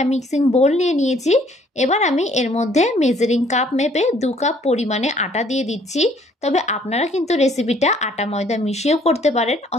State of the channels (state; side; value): normal; both; correlation 0.61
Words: মিক্সিং বোল নিয়ে নিয়েছি। এবার আমি এর মধ্যে মেজারিং কাপ মেপে 2 কাপ পরিমাণে আটা দিয়ে দিচ্ছি। তবে আপনারা কিন্তু রেসিপিটা আটা ময়দা মিশিয়েও করতে পারেন